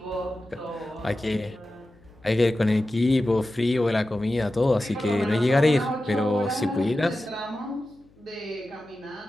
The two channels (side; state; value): left; noise; hum, 30 dB below the sound